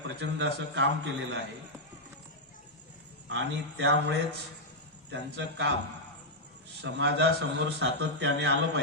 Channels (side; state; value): both; normal; correlation -0.05